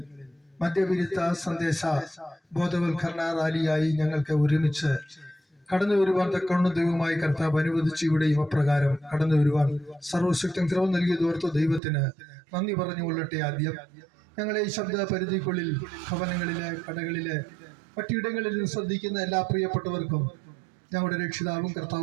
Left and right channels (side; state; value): left; drops out; at 11.8 s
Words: മദ്യവിരുദ്ധ സന്ദേശ ബോധവൽക്കരണ റാലിയായി ഞങ്ങൾക്ക് ഒരുമിച്ച് കടന്നു വരുവാൻ തക്കവണ്ണം ദൈവമായി കർത്താവ് അനുവദിച്ചു. ഇവിടെയും അപ്രകാരം കടന്നു വരുവാൻ സർവശക്തൻ കൃപ നൽകിയതോർത്ത് ദൈവത്തിന് നന്ദി പറഞ്ഞുകൊള്ളട്ടെ. ആദ്യം ഞങ്ങളെ ഈ ശബ്ദ പരിധിക്കുള്ളിൽ ഭവനങ്ങളിലെ, കടകളിലെ, മറ്റിടങ്ങളിൽ ശ്രദ്ധിക്കുന്ന എല്ലാ പ്രിയപ്പെട്ടവർക്കും ഞങ്ങളുടെ രക്ഷിതാവും